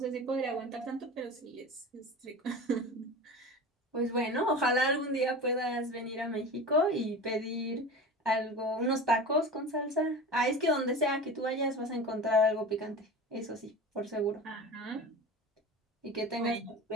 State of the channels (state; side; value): normal; both; correlation 0.32